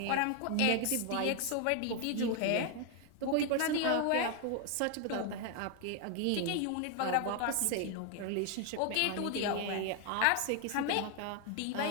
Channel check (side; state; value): both; different; correlation 0.01